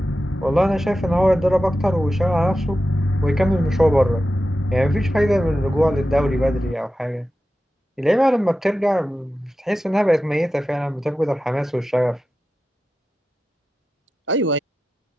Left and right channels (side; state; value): both; normal; correlation 0.92